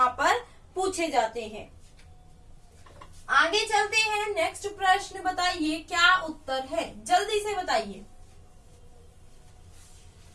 पर पूछे जाते हैं। आगे चलते हैं, नेक्स्ट प्रश्न बताइए क्या उत्तर है, जल्दी से बताइए।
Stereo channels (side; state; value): both; identical; correlation 1.00